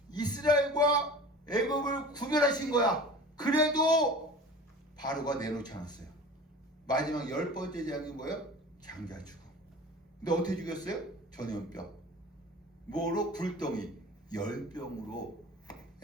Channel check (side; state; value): both; normal; correlation 0.39